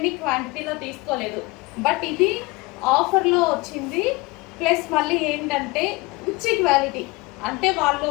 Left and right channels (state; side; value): quieter; right; 23.4 dB